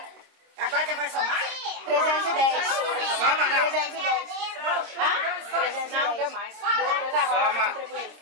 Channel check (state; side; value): late; left; 26 ms